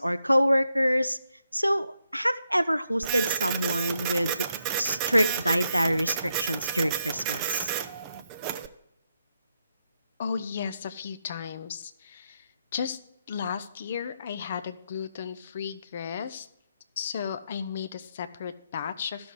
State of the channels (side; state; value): both; inverted; correlation -0.81